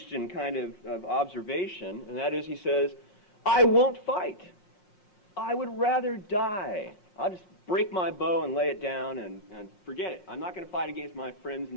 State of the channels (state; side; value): late; right; 5.6 ms